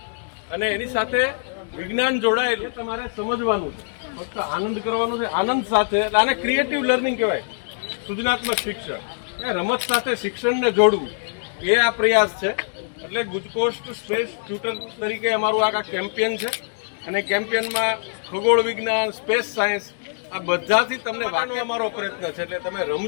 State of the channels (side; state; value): right; silent; digital silence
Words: અને એની સાથે વિજ્ઞાન જોડાયેલું તમારે સમજવાનું છે. ફક્ત આનંદ કરવાનો છે, આનંદ સાથે. આને ક્રિએટિવ લર્નિંગ કહેવાય, સૃજનાત્મક શિક્ષણ. એ રમત સાથે શિક્ષણને જોડવું એ આ પ્રયાસ છે. એટલે ગુજકોસ્ટ સ્પેસ ટ્યુટર તરીકે અમારું આ કેમ્પેન છે અને કેમ્પેનમાં ખગોળ વિજ્ઞાન, સ્પેસ સાયન્સ આ બધાથી તમને વાંચવાનો અમારો પ્રયત્ન છે. એટલે તમે